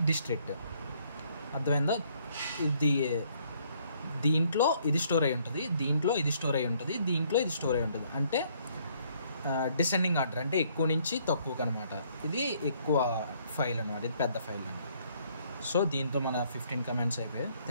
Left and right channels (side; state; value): both; inverted; correlation -0.66